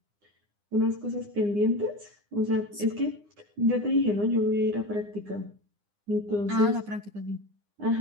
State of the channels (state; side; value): late; left; 9.8 ms